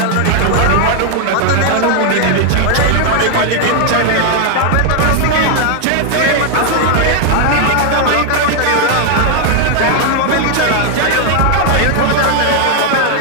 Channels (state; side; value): different; both; correlation 0.00